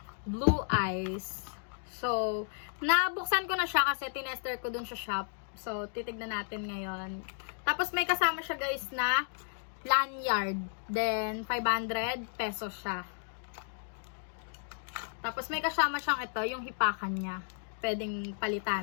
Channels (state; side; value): silent; right; digital silence